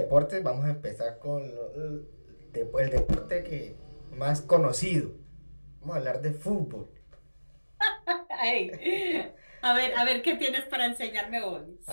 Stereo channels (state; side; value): inverted; both; correlation -1.00